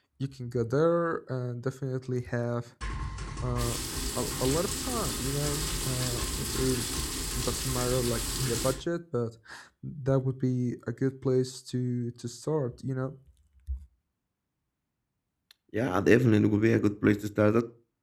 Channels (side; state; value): both; identical; correlation 1.00